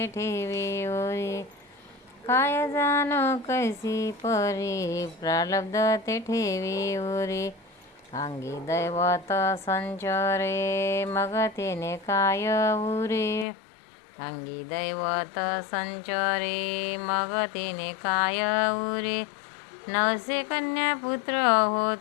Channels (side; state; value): right; drops out; at 13.5 s